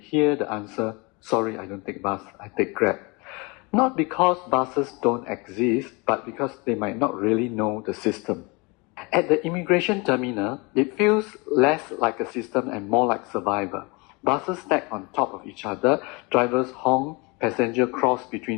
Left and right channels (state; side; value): quieter; right; 27.9 dB